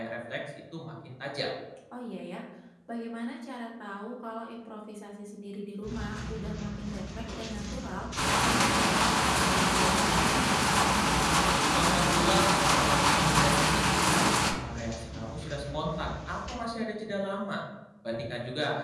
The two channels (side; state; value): both; identical; correlation 1.00